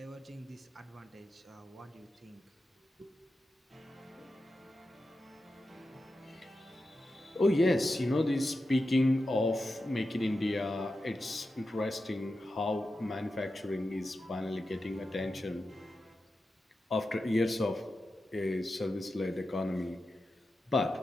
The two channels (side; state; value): both; normal; correlation 0.91